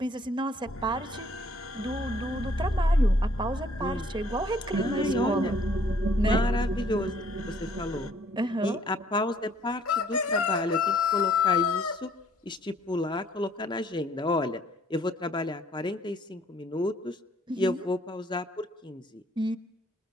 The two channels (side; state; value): both; normal; correlation 0.61